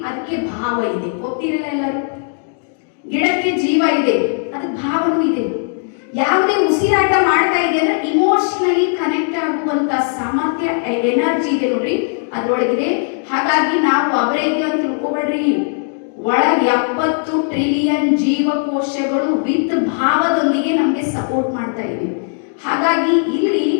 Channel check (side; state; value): right; silent; 56 dB below the other